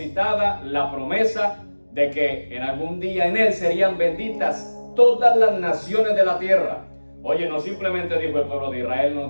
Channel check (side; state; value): both; inverted; correlation -1.00